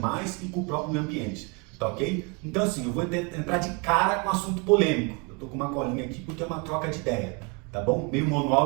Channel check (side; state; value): left; quieter; 31.8 dB